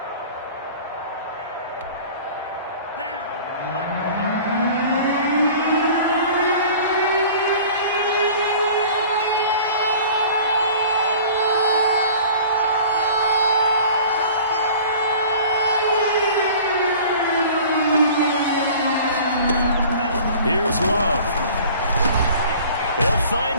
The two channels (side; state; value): both; inverted; correlation -0.45